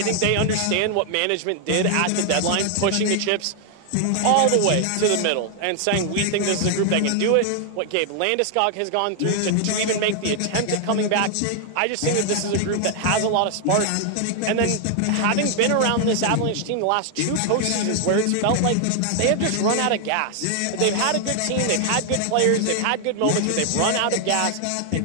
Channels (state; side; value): different; both; correlation 0.00